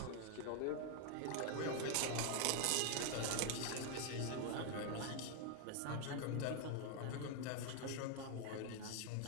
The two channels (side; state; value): both; different; correlation 0.00